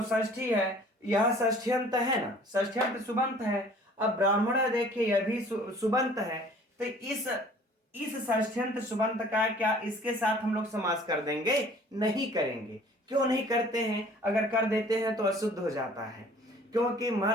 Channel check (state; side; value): normal; both; correlation 0.51